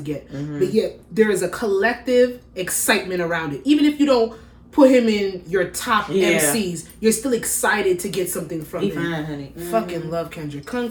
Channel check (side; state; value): both; identical; correlation 1.00